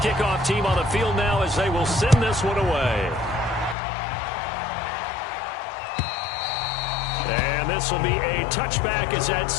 team on the field now as they will send this one away. And this will be a touchback as that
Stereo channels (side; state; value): right; drops out; at 3.8 s